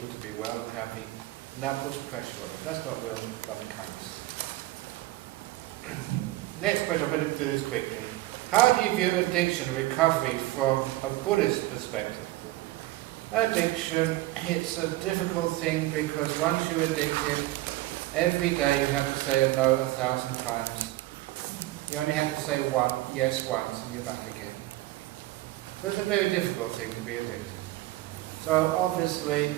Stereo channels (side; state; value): left; quieter; 17.5 dB